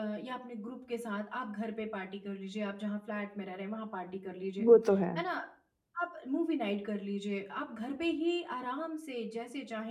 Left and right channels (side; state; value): both; identical; correlation 1.00